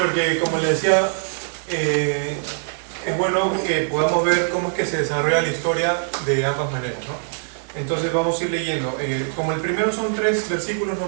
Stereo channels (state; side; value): silent; left; digital silence